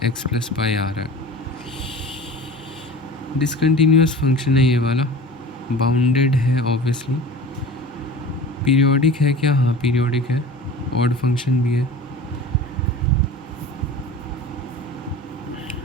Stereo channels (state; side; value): normal; both; correlation 0.38